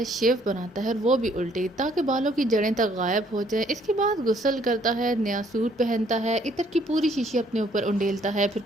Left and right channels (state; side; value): normal; both; correlation 0.64